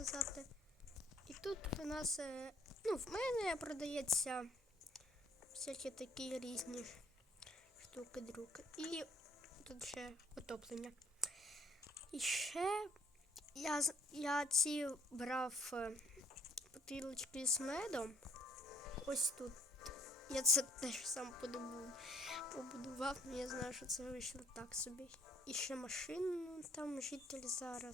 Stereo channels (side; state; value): both; normal; correlation 0.62